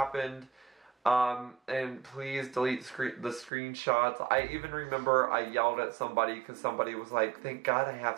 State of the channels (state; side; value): drops out; left; at 3.5 s